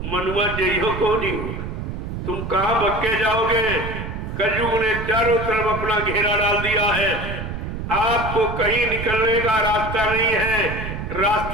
मनुआ जइहो को नहीं हो। तुम कहां भक्के जाओगे? कलयुग ने चारों तरफ अपना घेरा डाल दिया है। आपको कहीं निकलने का रास्ता नहीं है।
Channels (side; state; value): right; noise; rumble, 6 dB below the sound